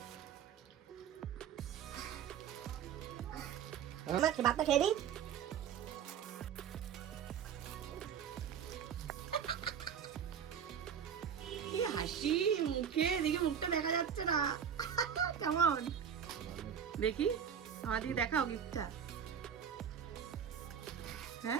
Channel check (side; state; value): left; quieter; 8.2 dB